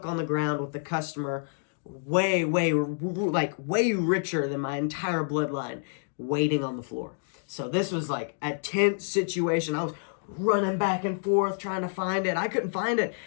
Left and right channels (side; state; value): right; silent; digital silence